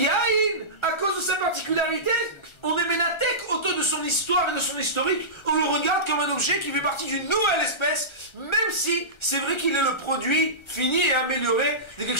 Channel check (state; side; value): late; right; 1.4 ms